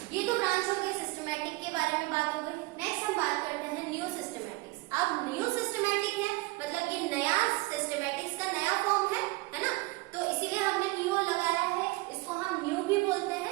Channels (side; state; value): left; quieter; 22.3 dB